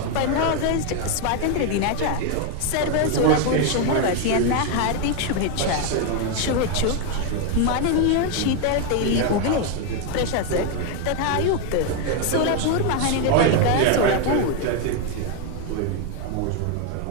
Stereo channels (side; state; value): both; different; correlation 0.01